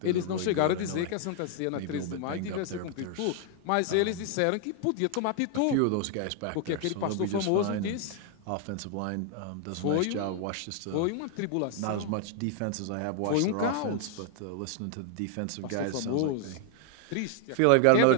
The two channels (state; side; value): different; both; correlation 0.00